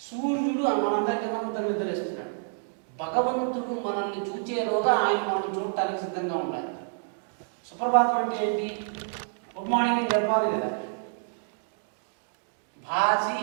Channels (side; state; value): left; silent; digital silence